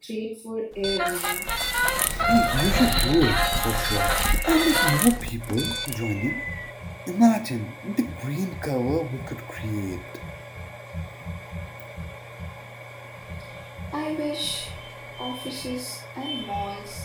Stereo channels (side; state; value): both; identical; correlation 1.00